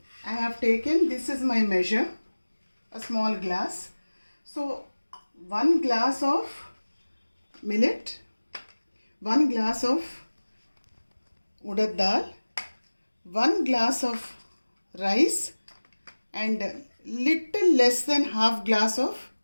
I have taken, this is my measure, a small glass. So 1 glass of millet, 1 glass of urad dal, 1 glass of rice and little less than half glass of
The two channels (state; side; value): inverted; both; correlation -1.00